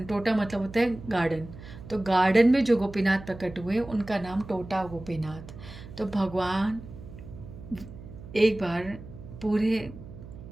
टोटा मतलब होता है गार्डन। तो गार्डन में जो गोपीनाथ प्रकट हुए उनका नाम टोटा गोपीनाथ। तो भगवान एक बार पूरे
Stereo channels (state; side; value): noise; right; hum, 15 dB below the sound